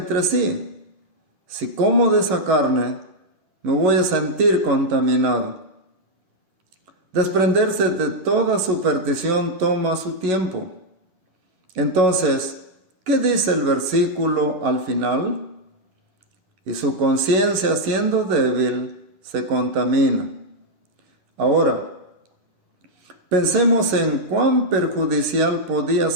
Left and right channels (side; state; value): left; late; 10 ms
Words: sí, si como de esa carne, me voy a sentir contaminado. Desprenderse de toda superstición toma su tiempo. Entonces, ¿Qué dice el versículo al final? Y su conciencia, siendo débil, se contamina. Ahora, pensemos en cuán perjudicial podía